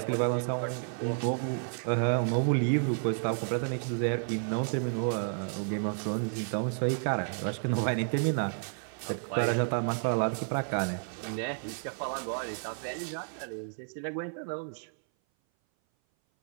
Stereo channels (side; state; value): left; silent; 57 dB below the other